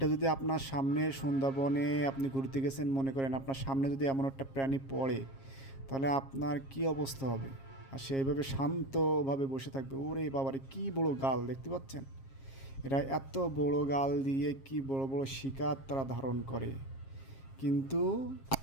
যদি আপনার সামনে সুন্দরবনে আপনি ঘুরতে গেছেন, মনে করেন আপনার সামনে যদি এমন একটা প্রাণী পড়ে, তাহলে আপনার কি অবস্থা হবে? আর সে এইভাবে শান্তভাবে বসে থাকবে। ওরে বাবারে, কি বড় গাল দেখতে পাচ্ছেন? এরা এত বড় গাল দিয়ে কি বড় বড় শিকার তারা ধারণ করে, কিন্তু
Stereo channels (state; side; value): late; right; 7.4 ms